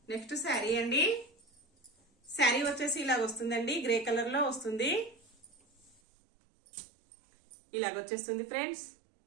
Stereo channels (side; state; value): left; drops out; at 6.0 s